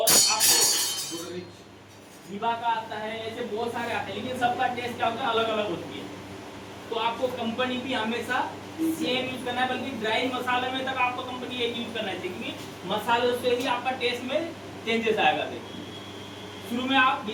आपको विवा का आता है, ऐसे बहुत सारे आते हैं, लेकिन सबका टेस्ट क्या होता है, अलग अलग होती है। तो आपको कंपनी भी हमेशा सेम यूज करना है, बल्कि ड्राई मसाले में तक आपको कंपनी एक यूज करना है, क्योंकि मसाले से ही आपका टेस्ट में चेंजेस आएगा। शुरू में आप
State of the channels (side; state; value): both; identical; correlation 1.00